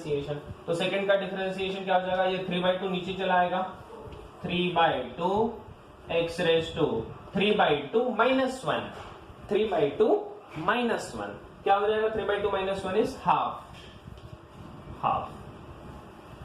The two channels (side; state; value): both; identical; correlation 1.00